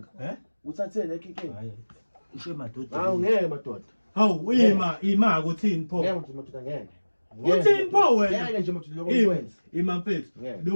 khona kuthatheni inkinga hayi ushe madoda hawu ngeke madoda hawu ima ukuthini pho ngeke nje madoda ngeke uthini pho wena ngeke nje madoda lokho ngikwenza ima mfethu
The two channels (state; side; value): inverted; both; correlation -1.00